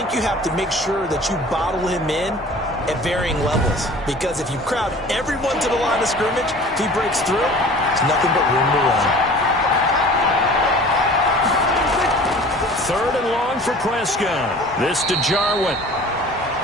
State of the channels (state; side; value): normal; both; correlation 0.44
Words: you have to make sure that you bottle him in at varying levels, because if you crowd everyone to the line of scrimmage, if he breaks through, there's nothing but room to run. Third and long for Prescott. This to Jarwin.